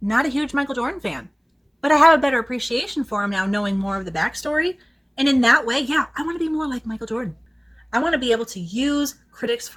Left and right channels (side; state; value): both; identical; correlation 1.00